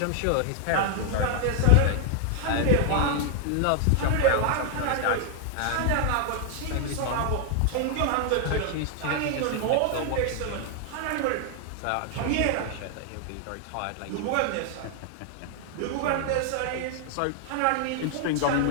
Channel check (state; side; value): different; both; correlation 0.00